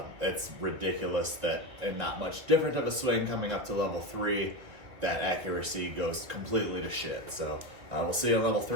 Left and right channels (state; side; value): late; left; 2.2 ms